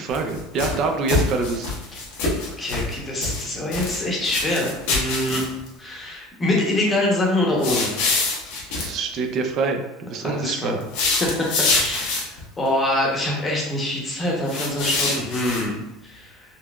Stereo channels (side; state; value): both; normal; correlation 0.41